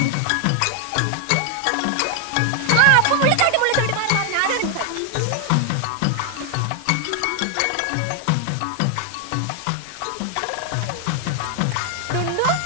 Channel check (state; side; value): different; both; correlation 0.00